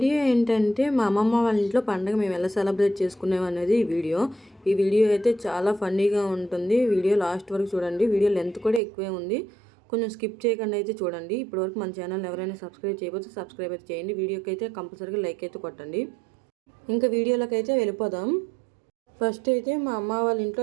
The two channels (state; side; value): drops out; left; at 8.8 s